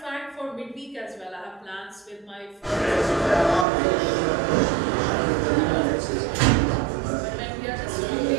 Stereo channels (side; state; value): left; drops out; at 3.7 s